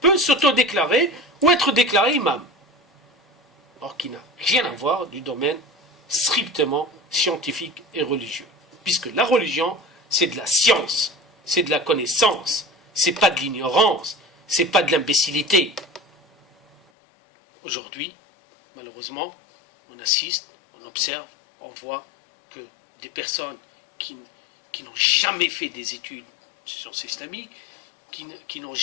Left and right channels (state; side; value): drops out; right; at 16.8 s